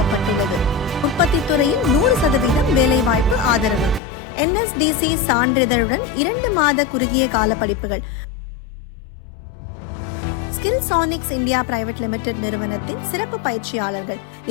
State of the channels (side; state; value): right; drops out; at 4.0 s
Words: உற்பத்தி துறையில் 100% வேலைவாய்ப்பு ஆதரவு. NSDC சான்றிதழுடன் 2 மாத குறுகிய கால படிப்புகள். ஸ்கில்சானிக்ஸ் இந்தியா பிரைவேட் லிமிடெட் நிறுவனத்தின் சிறப்பு பயிற்சியாளர்கள்.